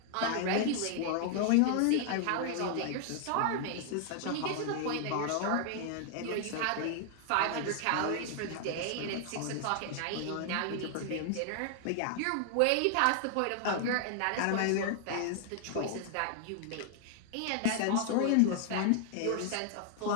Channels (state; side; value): different; both; correlation 0.00